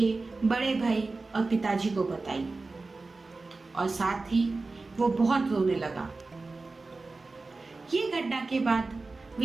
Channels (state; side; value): quieter; left; 3.6 dB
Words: बड़े भाई और पिताजी को बताई और साथ ही वो बहुत रोने लगा। ये घटना के बाद